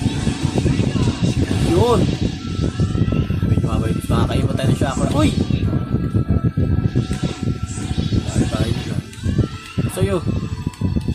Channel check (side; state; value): both; identical; correlation 1.00